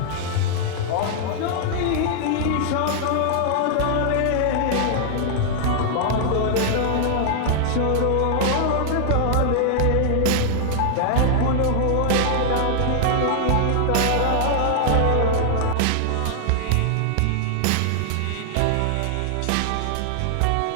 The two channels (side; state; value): both; different; correlation -0.01